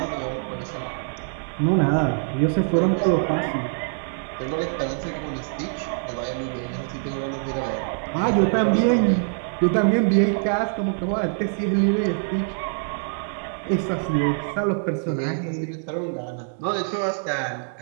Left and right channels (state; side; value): silent; left; digital silence